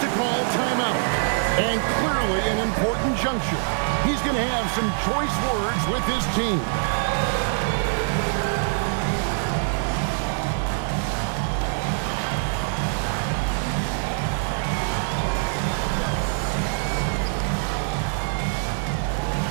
to call timeout. And clearly an important juncture. He's going to have some choice words with his team.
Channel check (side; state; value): left; silent; digital silence